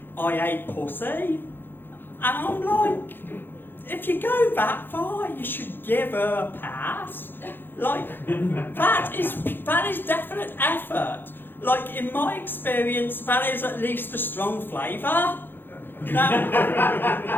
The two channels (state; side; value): late; right; 0.099 ms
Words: I ate pussy. And I'm like, if you go that far, you should give her a pass. Like, that is definite effort. Like, in my experience, that is at least a strong flavour. Now,